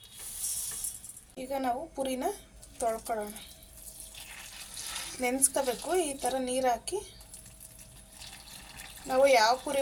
ಈಗ ನಾವು ಪುರಿನ ತೊಳ್ಕೊಳ್ಳೋಣ. ನೆನೆಸ್ಕೋಬೇಕು. ಈ ಥರ ನೀರು ಹಾಕಿ ನಾವು ಯಾವ ಪುರಿ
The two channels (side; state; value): both; identical; correlation 1.00